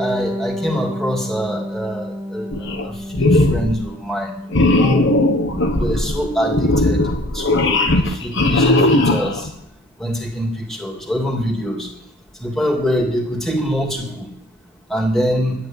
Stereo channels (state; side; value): normal; both; correlation 0.55